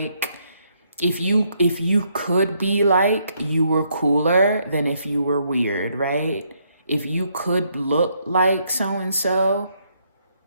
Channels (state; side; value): inverted; both; correlation -0.73